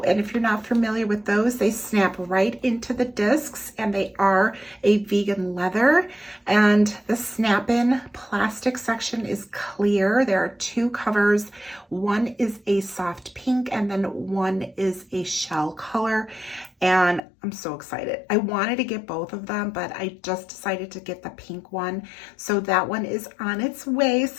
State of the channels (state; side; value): drops out; right; at 17.2 s